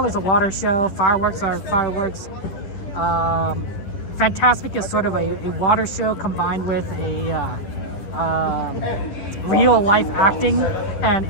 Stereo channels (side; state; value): right; late; 10 ms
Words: is a water show, fireworks are fireworks. Fantasmic is sort of a water show combined with a real life acting and